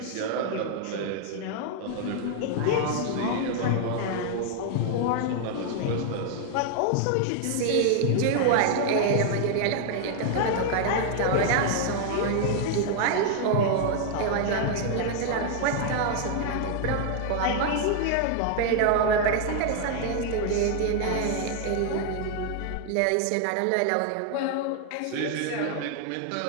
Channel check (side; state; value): both; different; correlation 0.00